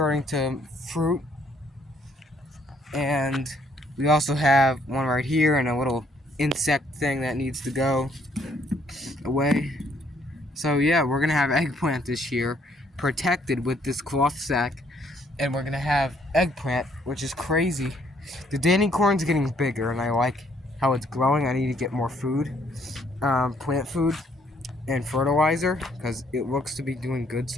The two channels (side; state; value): both; normal; correlation 0.67